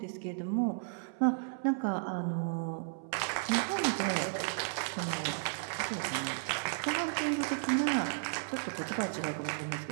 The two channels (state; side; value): silent; left; 55 dB below the other